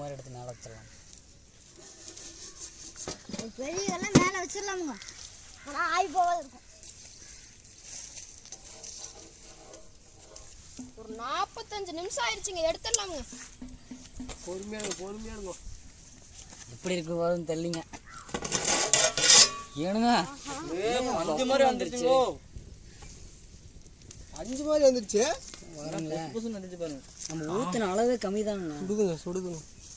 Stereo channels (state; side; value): identical; both; correlation 1.00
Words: எடுத்து மேலே வச்சிடலாம். பெரிய எல்லாம் மேலே வச்சிடலாமுங்க. ஆனால் ஆய் போகாது இருக்கும். ஒரு 45 நிமிஷம் ஆயிடுச்சுங்க. எடுத்துடலாமுங்க. பொறுமையாடுங்க. எப்படி இருக்கு போதுன்னு தெரியலிங்க. ஏனுங்க 5 மாதிரி வந்துருச்சு. 5 மாதிரி வந்துருச்சு. வந்துச்சு பாருங்க. நம்ம ஊற்றின அளவே கம்மி தானுங்க. சுடுதுங்க.